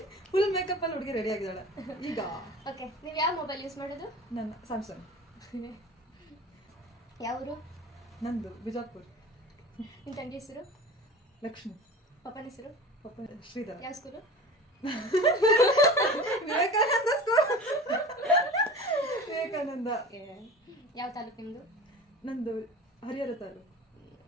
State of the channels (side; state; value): both; normal; correlation 0.37